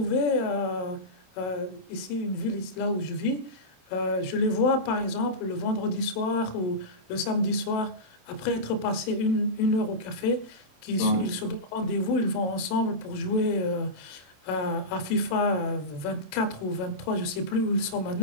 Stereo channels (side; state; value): right; late; 27 ms